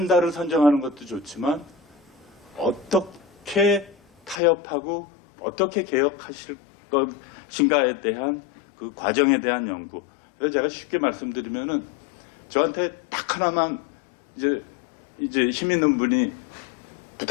선정하는 것도 좋지만 어떻게 타협하고 어떻게 개혁하실 것인가에 대한 그 과정에 대한 연구. 그래서 제가 쉽게 말씀드리면은 저한테 딱 하나만 이제 힘 있는 분이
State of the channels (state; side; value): drops out; right; at 4.4 s